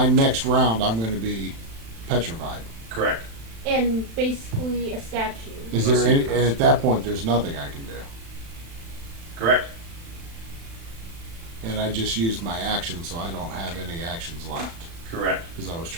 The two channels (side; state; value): left; late; 36 ms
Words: next round, I'm going to be petrified. Correct. And basically a statue. Is there any? And at that point, there's nothing I can do. Correct. And I just used my action, so I don't have any actions left Correct. because I was